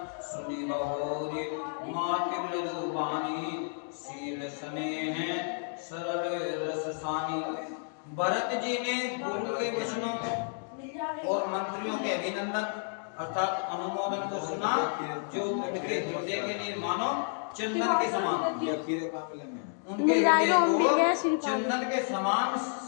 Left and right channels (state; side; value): silent; right; 57 dB below the other